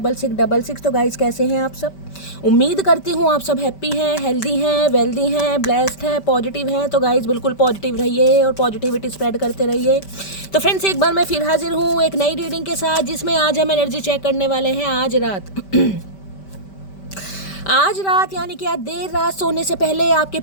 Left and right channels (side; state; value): right; late; 5.1 ms